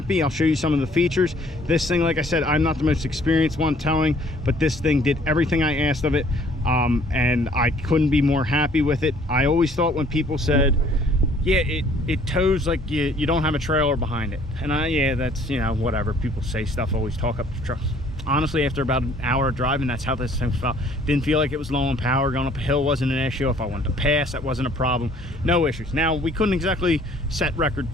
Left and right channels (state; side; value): normal; both; correlation 0.58